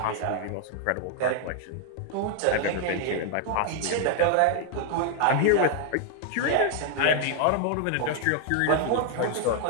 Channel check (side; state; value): both; different; correlation 0.00